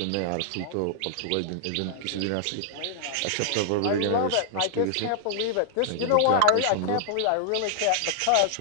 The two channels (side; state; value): both; different; correlation -0.01